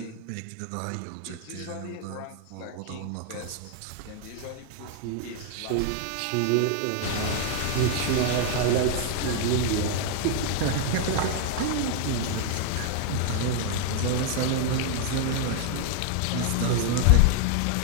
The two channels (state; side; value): different; both; correlation 0.00